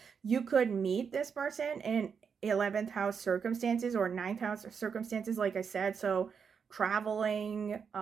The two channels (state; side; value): quieter; left; 6.4 dB